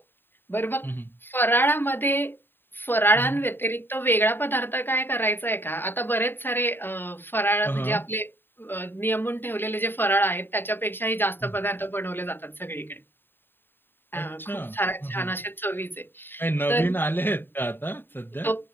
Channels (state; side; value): late; right; 0.098 ms